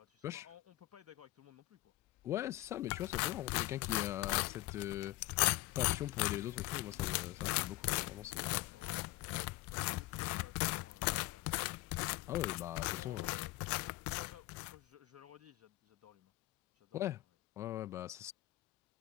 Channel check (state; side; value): quieter; right; 18.4 dB